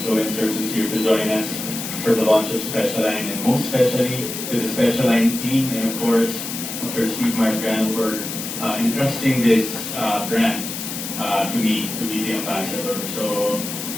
who's here to join us for the launch of Special Line, and most especially to the Special Line team, and of course, Dr. Steve Margan for entrusting this brand to me, to be the ambassador. So,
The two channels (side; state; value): left; noise; hiss, 6 dB below the sound